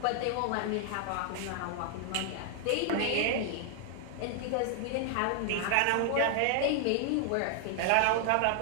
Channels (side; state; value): both; different; correlation 0.00